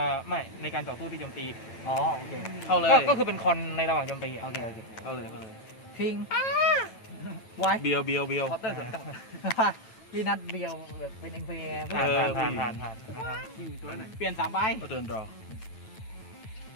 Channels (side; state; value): right; late; 9.1 ms